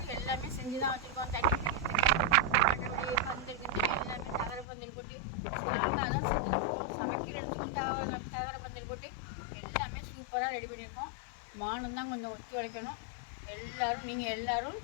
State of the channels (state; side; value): drops out; right; at 4.7 s